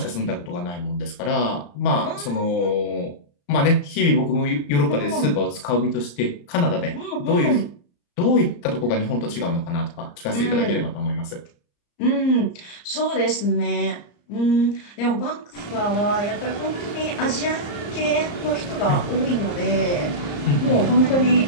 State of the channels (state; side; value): late; right; 34 ms